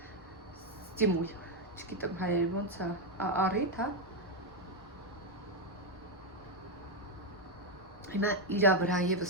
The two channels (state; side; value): normal; both; correlation 0.04